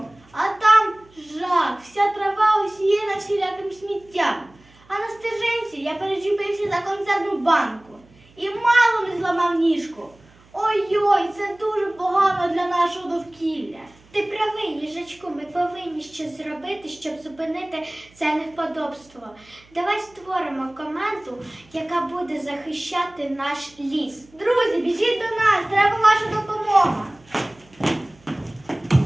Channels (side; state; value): right; noise; hum, 28 dB below the sound